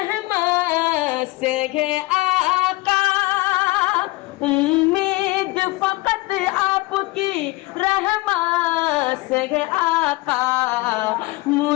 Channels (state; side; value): quieter; right; 22.1 dB